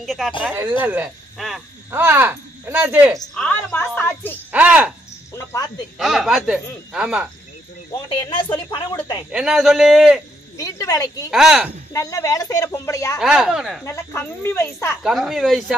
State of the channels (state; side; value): normal; both; correlation 0.73